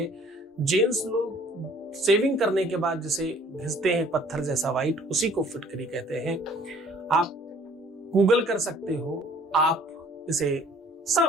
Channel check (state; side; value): normal; both; correlation 0.55